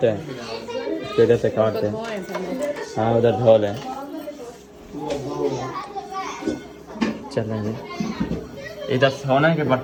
इसको इधर से काटते हैं। हाँ उधर धो लें। चलें जी, इधर सोने के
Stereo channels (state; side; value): identical; both; correlation 1.00